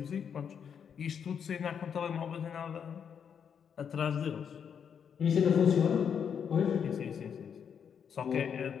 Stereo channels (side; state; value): right; quieter; 7.5 dB